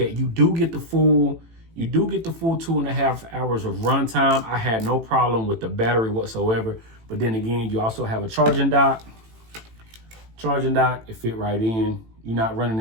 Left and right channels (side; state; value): left; late; 18 ms